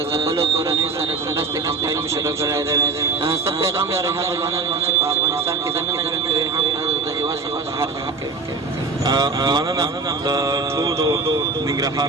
ځپلو کورنیو سره د مرستې کمپاین مو شروع کړی دی. څه پیغام لرئ هغو ځوانانو چې په افغانستان کې دننه ژوند کوي هم د هېواد څخه بهر ژوند کوي؟ مننه د ټولو ننګرهار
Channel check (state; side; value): quieter; left; 3.9 dB